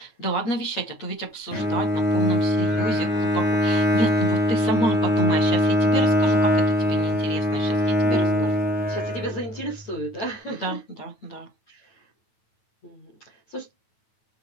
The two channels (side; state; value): right; late; 9.1 ms